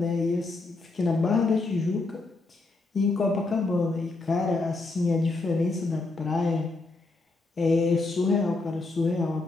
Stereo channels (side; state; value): right; quieter; 3.4 dB